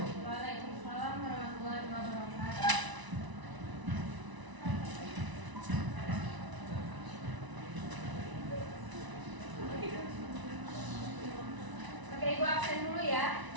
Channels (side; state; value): left; late; 1.0 ms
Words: Waalaikumsalam warahmatullahi wabarakatuh. Oke, Ibu absen dulu ya.